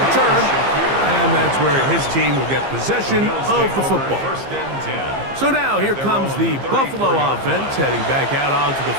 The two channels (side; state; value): left; late; 15 ms